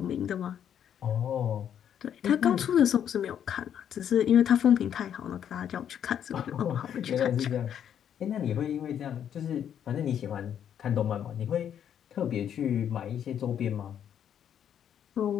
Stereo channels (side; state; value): right; quieter; 9.2 dB